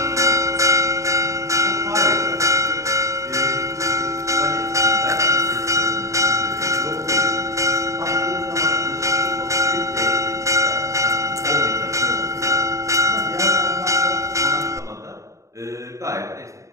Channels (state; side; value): late; left; 0.15 ms